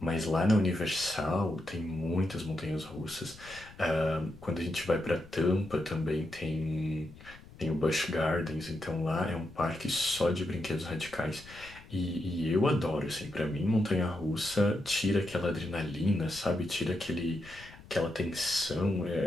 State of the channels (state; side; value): noise; left; rumble, 20 dB below the sound